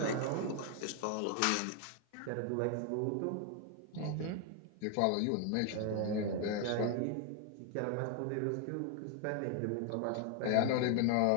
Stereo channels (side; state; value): both; different; correlation 0.00